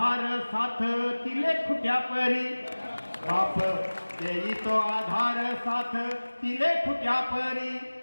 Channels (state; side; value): inverted; both; correlation -1.00